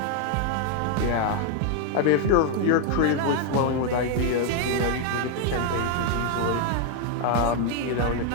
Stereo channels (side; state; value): both; different; correlation 0.00